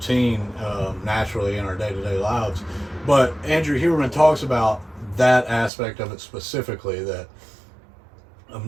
naturally in our day-to-day lives. But Andrew Huberman talks about that aspect of it specifically, that of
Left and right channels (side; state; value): left; drops out; at 5.7 s